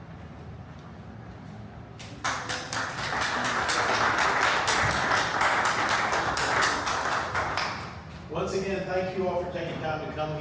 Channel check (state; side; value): identical; both; correlation 1.00